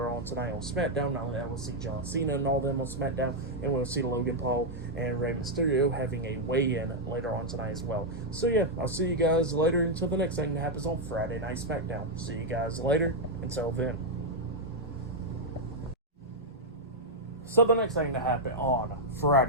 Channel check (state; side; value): normal; both; correlation -0.03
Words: on tonight on SmackDown. Not only that, we'll see John Cena and all them on SmackDown, and we'll see Logan Paul and Rey Mysterio having a weigh-in later on tonight as well. So yeah, I'll see you guys later until the next thing that happens on Friday Night SmackDown. See you guys later. Until then. So the next thing to happen on